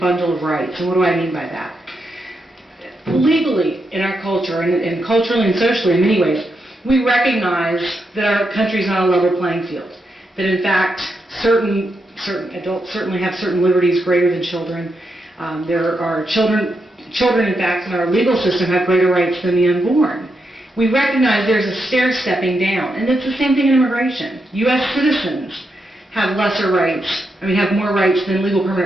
of rights. And what do I mean by that? Legally, in our culture, and culturally and socially in many ways, we recognize that our country is not a level playing field. That in fact, certain adults certainly have certain liberties greater than children. There are children in fact in our legal system have greater rights than the unborn. We recognize there's a stair-stepping down, and it's the same thing in immigration. U.S. citizens have lesser rights, have more rights than legal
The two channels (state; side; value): normal; both; correlation 0.83